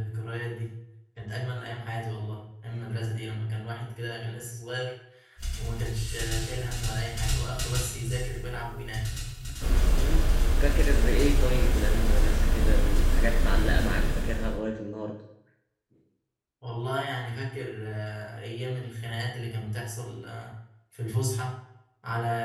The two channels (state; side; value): identical; both; correlation 1.00